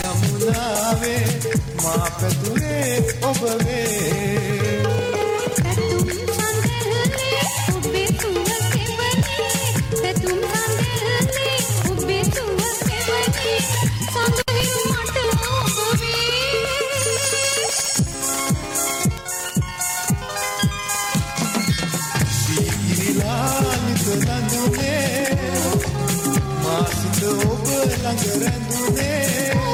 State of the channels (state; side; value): identical; both; correlation 1.00